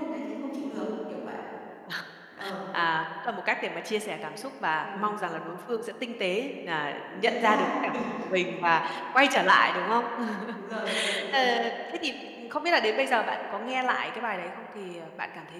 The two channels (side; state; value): both; identical; correlation 1.00